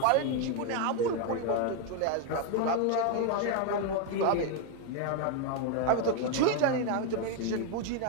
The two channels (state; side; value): different; both; correlation 0.01